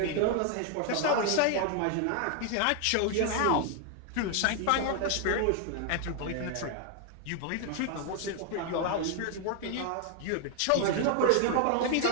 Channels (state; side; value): different; both; correlation 0.00